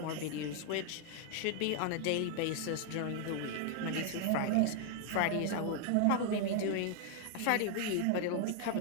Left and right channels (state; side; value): different; both; correlation 0.00